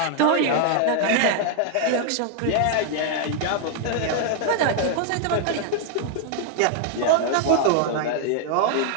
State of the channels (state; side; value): different; both; correlation 0.00